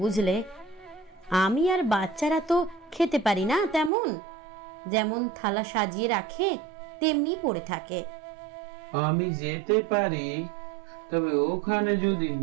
বুঝলে? আমি আর বাচ্চারা তো খেতে পারি না তেমন, যেমন থালা সাজিয়ে রাখে তেমনি পড়ে থাকে। আমি যেতে পারি, তবে ওখানে যদি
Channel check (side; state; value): left; drops out; at 3.9 s